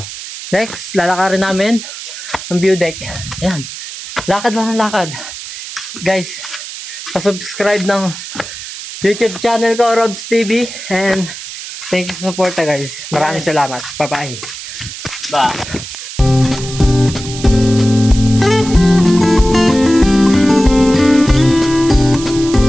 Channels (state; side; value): noise; right; hiss, 11 dB below the sound